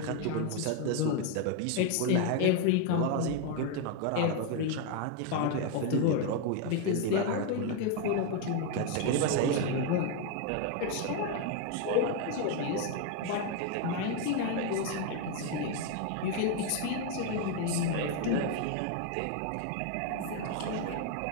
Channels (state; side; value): different; both; correlation 0.01